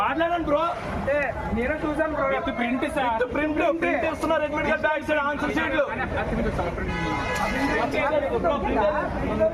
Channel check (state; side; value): identical; both; correlation 1.00